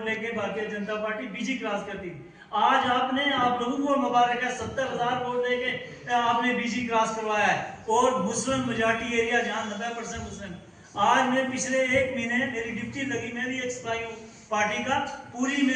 लेके भारतीय जनता पार्टी बीजी क्रॉस करती थी। आज आप लोगों को मुबारक है, 70,000 वोट लेके आपने बीजी क्रॉस करवाया है, और मुस्लिम मेजॉरिटी एरिया जहां 90% मुस्लिम। आज मैं पिछले 1 महीने मेरी ड्यूटी लगी, मैं भी एक सिपाही हूँ पार्टी का, पूरी में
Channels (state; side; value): identical; both; correlation 1.00